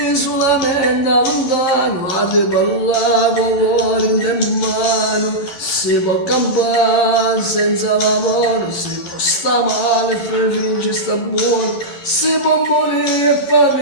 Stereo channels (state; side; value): late; right; 11 ms